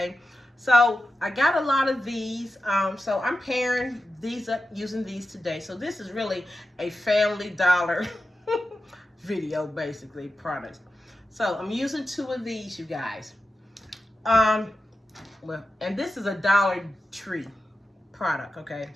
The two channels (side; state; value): both; normal; correlation 0.91